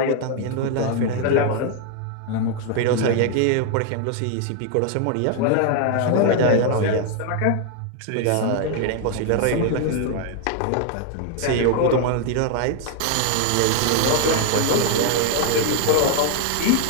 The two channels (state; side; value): different; both; correlation 0.00